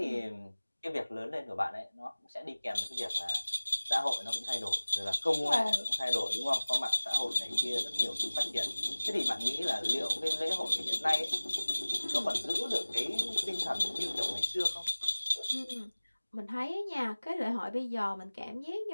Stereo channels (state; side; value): inverted; both; correlation -1.00